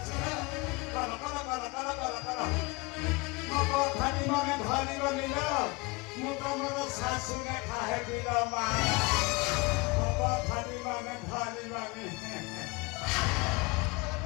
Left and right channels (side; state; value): right; quieter; 25.3 dB